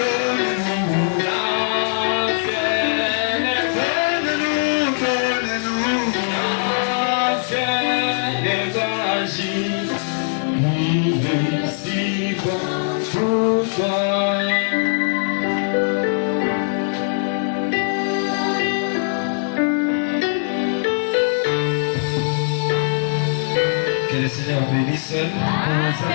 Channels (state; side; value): silent; right; 62 dB below the other